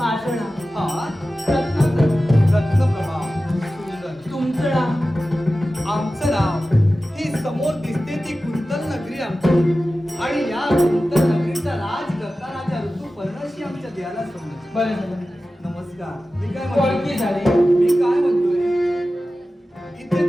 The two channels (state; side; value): normal; both; correlation 0.95